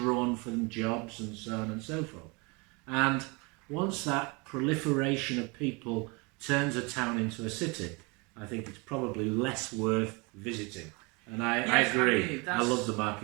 from jobs and so on and so forth. And once that proliferation of people turns a town into a city, I think it's probably less worth visiting. And I agree. I love the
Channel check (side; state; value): left; quieter; 28.9 dB